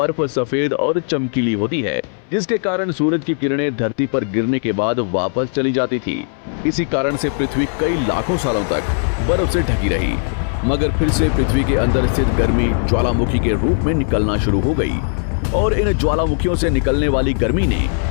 सफेद और चमकीली होती है, जिसके कारण सूरज की किरणें धरती पर गिरने के बाद वापस चली जाती थी। इसी कारण से पृथ्वी कई लाखों सालों तक बर्फ से ढकी रही, मगर फिर से पृथ्वी के अंदर स्थित गर्मी ज्वालामुखी के रूप में निकलना शुरू हो गई और इन ज्वालामुखियों से निकलने वाली गर्मी ने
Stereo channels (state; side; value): silent; right; 67 dB below the other